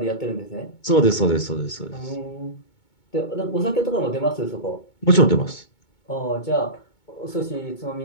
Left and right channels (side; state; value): right; late; 2.2 ms